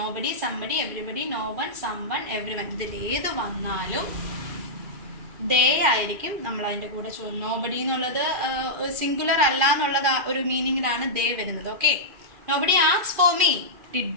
somebody, everybody, no one, someone, everyone, ഇതിലേത് വന്നാലും ദേ ആയിരിക്കും നമ്മൾ അതിൻ്റെ കൂടെ ചോദിക്കും. നോബഡി എന്നുള്ളത് സിംഗുലർ അല്ല എന്നുള്ളത് ഒരു മീനിങ്ങിലാണ് ദേ വരുന്നത്. Okay, nobody asks for me, did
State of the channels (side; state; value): left; late; 2.5 ms